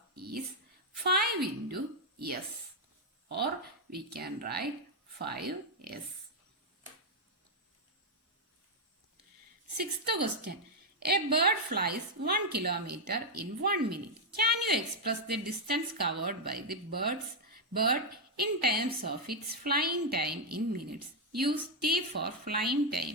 is 5 into S, or we can write 5S. Sixth question. A bird flies 1 kilometer in 1 minute. Can you express the distance covered by the bird in terms of its flying time in minutes? Use T for flying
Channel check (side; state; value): both; normal; correlation 0.00